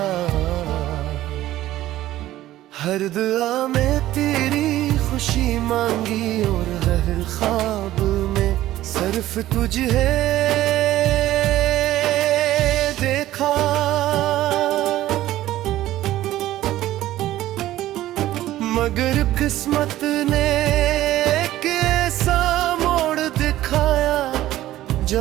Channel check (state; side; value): quieter; left; 14.6 dB